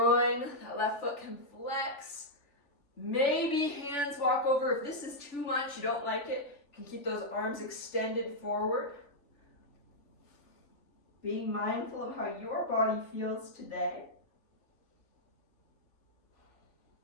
that left foot can flex. Maybe hands walk over. If this is too much, you don't like it, you can keep those arms extended forward. Being mindful of how your body feels today.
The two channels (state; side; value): late; right; 3.4 ms